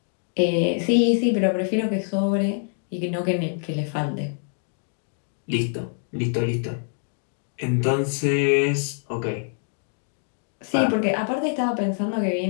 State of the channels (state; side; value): silent; right; 62 dB below the other